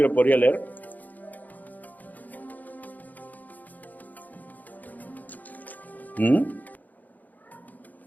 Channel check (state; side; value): late; right; 0.081 ms